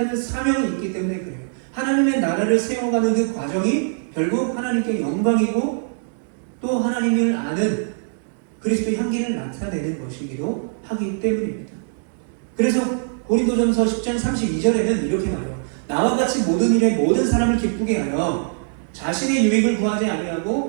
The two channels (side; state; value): left; silent; digital silence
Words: 사명이 있기 때문에 그래요. 하나님의 나라를 세워가는 그 과정이 결국 하나님께 영광이고 또 하나님을 아는 그리스도의 향기를 나타내는 것이기도 하기 때문입니다. 그래서 고린도전서 10장 32절에는 이렇게 말해요. 나와 같이 모든 일에 모든 사람을 기쁘게 하여 자신의 유익을 구하지